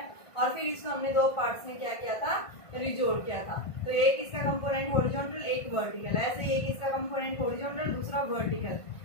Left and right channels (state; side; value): late; right; 1.5 ms